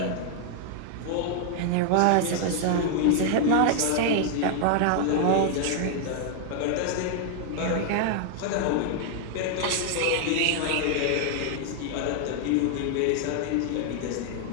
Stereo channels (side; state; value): both; different; correlation 0.00